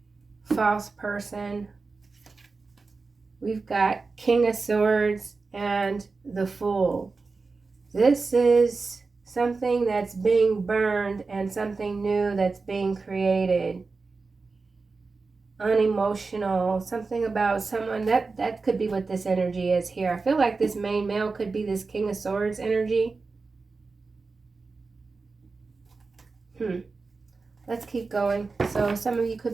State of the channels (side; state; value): left; quieter; 4.1 dB